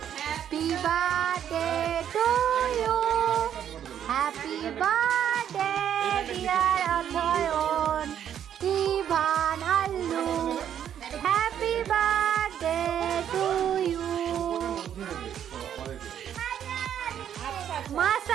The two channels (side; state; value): left; quieter; 9.6 dB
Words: happy birthday to you happy birthday dear Athayan কি